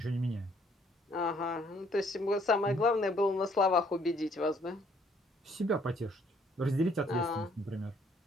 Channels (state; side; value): normal; both; correlation 0.64